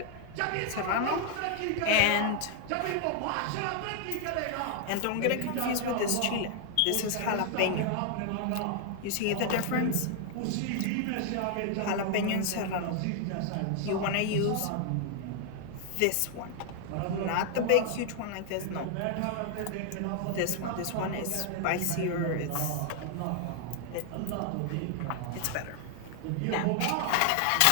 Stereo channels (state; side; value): different; both; correlation 0.00